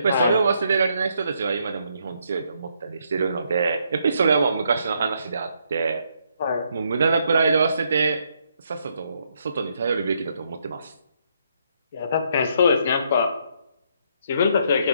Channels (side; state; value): both; inverted; correlation -0.74